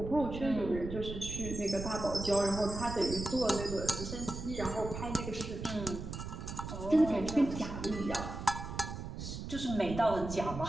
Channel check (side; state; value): right; noise; rumble, 7 dB below the sound